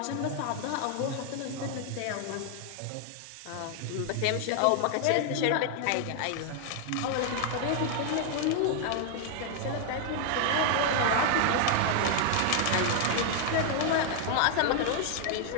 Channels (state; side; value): different; both; correlation 0.00